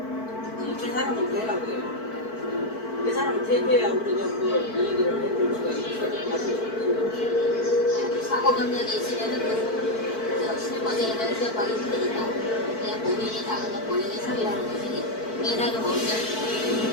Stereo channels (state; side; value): late; right; 4.5 ms